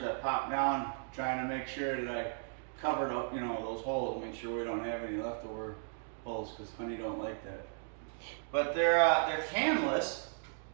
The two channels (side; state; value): left; silent; digital silence